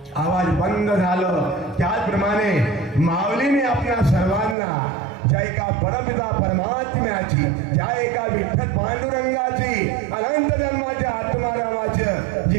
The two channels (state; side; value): drops out; left; at 4.5 s